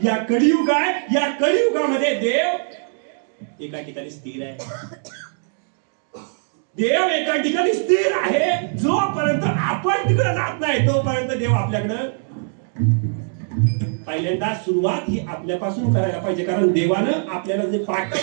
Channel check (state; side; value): silent; left; digital silence